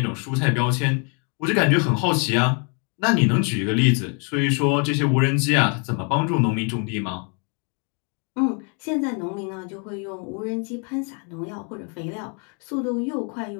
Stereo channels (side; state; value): right; quieter; 37.7 dB